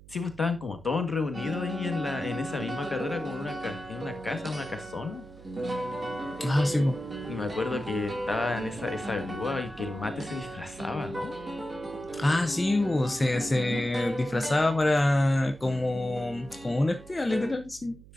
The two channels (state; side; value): noise; right; hum, 21 dB below the sound